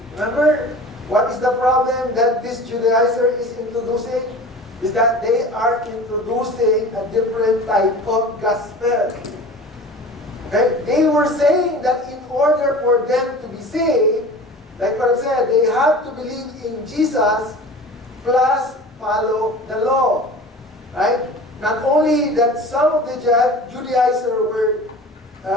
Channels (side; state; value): both; normal; correlation 0.39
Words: Remember, what is the problem that this Judaizer is introducing? Is that they are introducing a different type of gospel. Okay? They were saying that in order for them to be saved, like what I said, they have to believe in Jesus plus follow the law. Right? Not only that some of the Judaizers were,